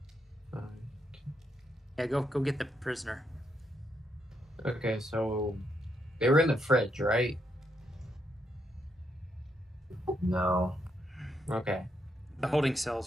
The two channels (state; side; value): normal; both; correlation 0.79